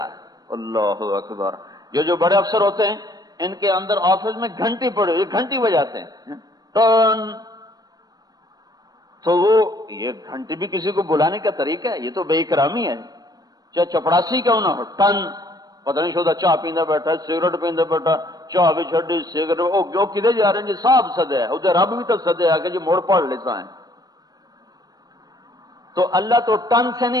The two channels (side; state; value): left; late; 0.19 ms